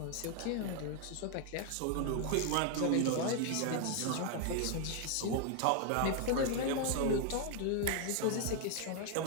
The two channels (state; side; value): different; both; correlation 0.00